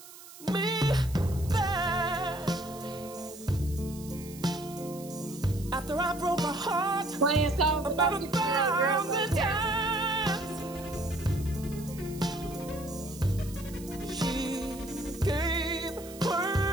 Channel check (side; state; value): right; noise; hiss, 17 dB below the sound